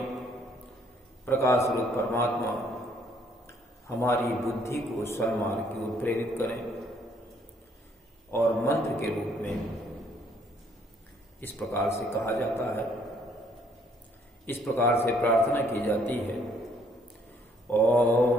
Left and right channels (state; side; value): normal; both; correlation 0.65